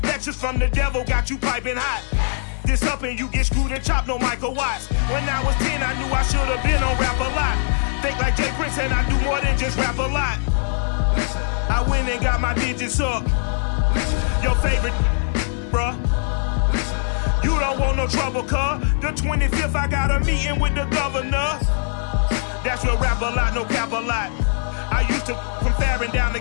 Lectures from the devil got you piping hot. This up and you get screwed and chopped, no Michael Watts. When I was 10, I knew I should have been on rap a lot. Think like Jay Prince and I do more than just rap a lot. I went and got my digits up. Your favorite, bruh. You don't want no trouble, cuz. The 25th, I got a meeting with the governor. That's real rap a lot, no cap a lot. I used to from Farron down to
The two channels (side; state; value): right; silent; digital silence